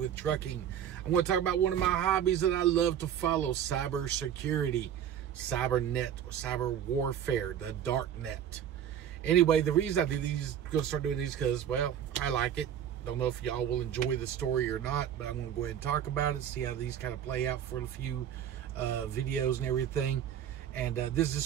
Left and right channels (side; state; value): left; quieter; 9.6 dB